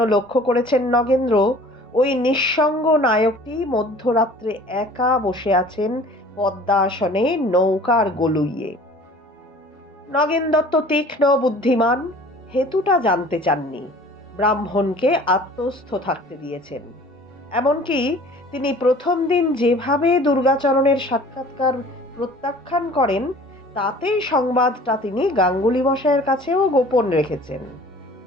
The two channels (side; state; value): both; normal; correlation 0.48